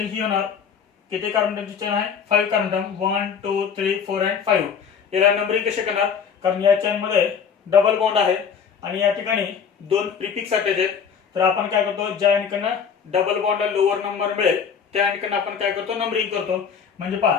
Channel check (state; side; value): quieter; right; 6.8 dB